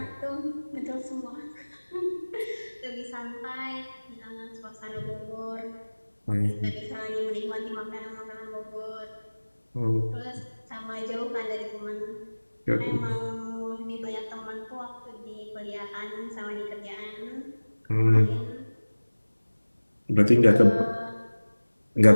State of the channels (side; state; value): both; inverted; correlation -1.00